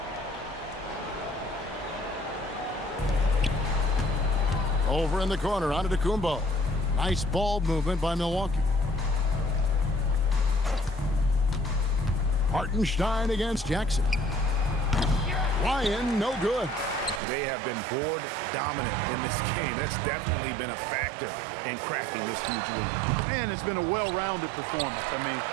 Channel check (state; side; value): drops out; left; at 17.2 s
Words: Over in the corner, Antetokounmpo. Nice ball movement by Milwaukee. Hartenstein against Jackson. Ryan, no good. They have been board dominant in this game. That's definitely been a factor in crafting this huge lead. And it's been a well-rounded performance. I mean,